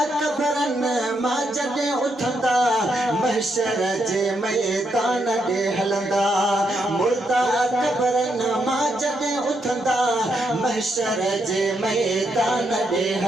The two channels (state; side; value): normal; both; correlation 0.79